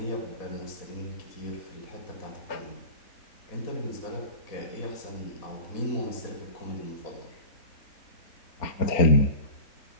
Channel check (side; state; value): right; late; 4.3 ms